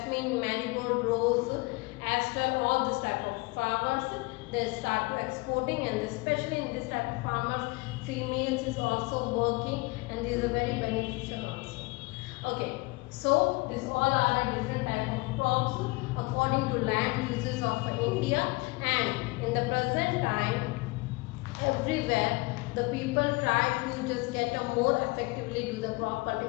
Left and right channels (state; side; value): quieter; right; 25.6 dB